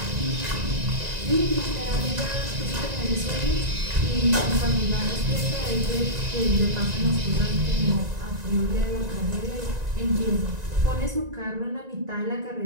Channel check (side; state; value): left; late; 1.9 ms